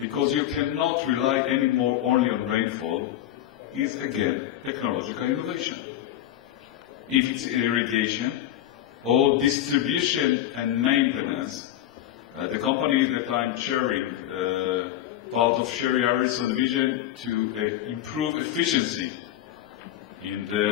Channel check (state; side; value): quieter; right; 12.5 dB